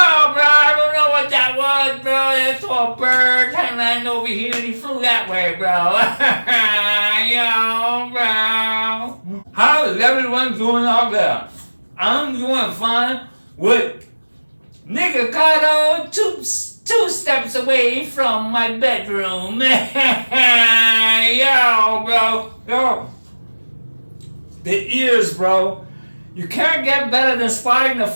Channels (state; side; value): inverted; both; correlation -1.00